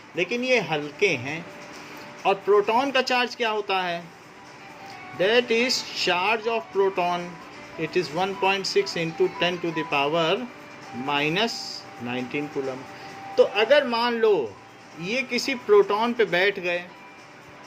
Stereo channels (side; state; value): both; identical; correlation 1.00